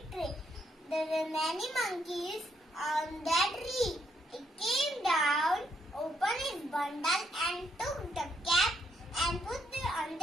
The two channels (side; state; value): both; normal; correlation 0.75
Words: tree. There were many monkeys on that tree. It came down, opened its bundle and took the cap and put it on